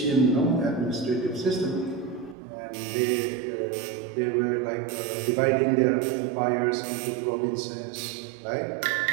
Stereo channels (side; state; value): left; drops out; at 2.4 s